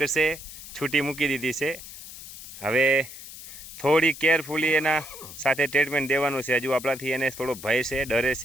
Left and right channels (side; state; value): left; noise; hiss, 14 dB below the sound